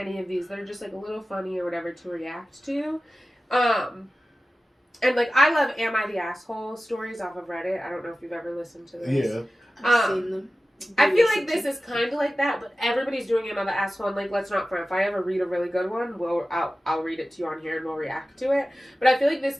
of these that are just like a little funny or whatever to react to. And like, I love Am I the Asshole stories off of Reddit. I don't know if you've ever listened to this. Yeah. I've seen them. I feel like this is kind of like that, but everybody's doing Am I the Asshole, and like, let's not front. If I ever read a really good one, I'll read it to you on here and we'll react to it. But I feel like this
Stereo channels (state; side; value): normal; both; correlation 0.95